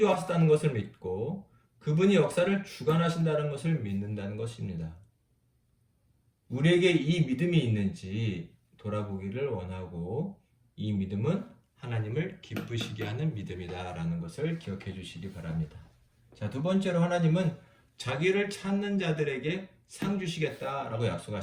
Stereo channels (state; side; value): identical; both; correlation 1.00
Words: 것을 믿고, 그분이 역사를 주관하신다는 것을 믿는다는 것입니다. 우리에게 이 믿음이 있는지 돌아보기를 원하고, 이 믿음은 하나님을 기쁘시게 하는 믿음이다라는 것을 기억해 주시기 바랍니다. 자, 두 번째로 하나님은 자기를 찾는 자들에게 상 주시겠다라고